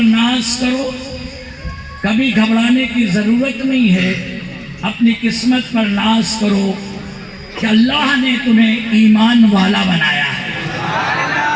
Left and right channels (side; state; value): both; identical; correlation 1.00